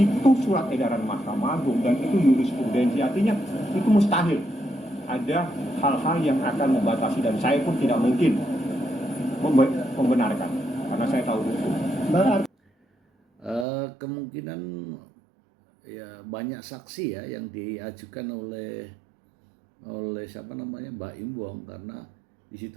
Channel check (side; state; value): left; drops out; at 13.7 s